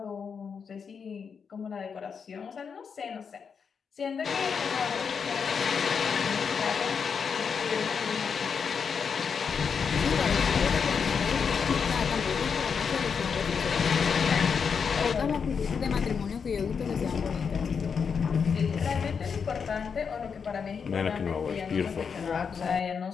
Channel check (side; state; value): right; quieter; 6.2 dB